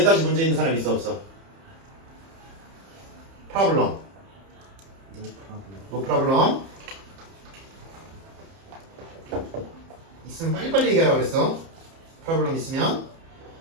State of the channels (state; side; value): late; left; 30 ms